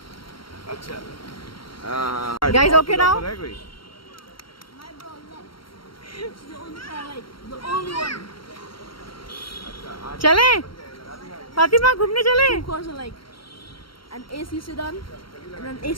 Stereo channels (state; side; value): late; right; 0.74 ms